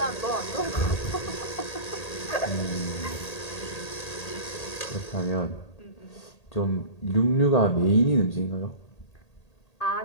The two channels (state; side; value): late; right; 1.8 ms